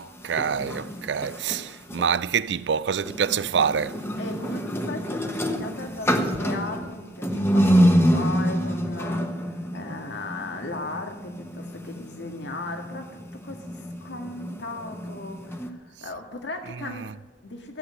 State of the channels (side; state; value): both; normal; correlation 0.56